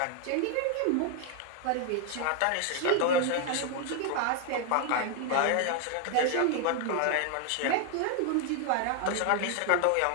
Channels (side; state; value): both; different; correlation 0.00